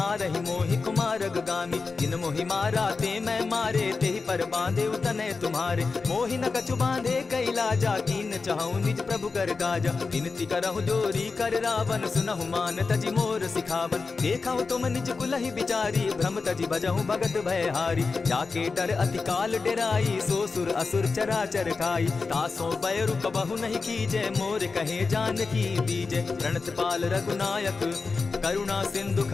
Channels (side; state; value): right; quieter; 4.4 dB